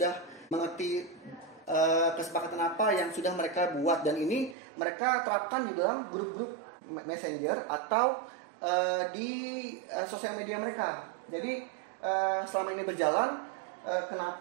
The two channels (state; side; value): drops out; left; at 4.5 s